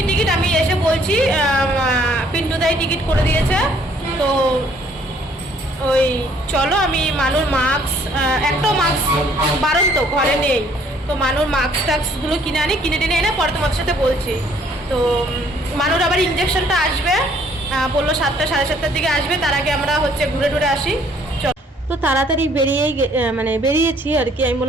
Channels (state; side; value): normal; both; correlation 0.62